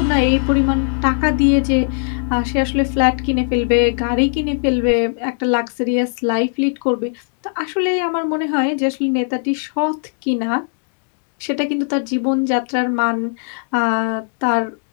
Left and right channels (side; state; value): right; silent; digital silence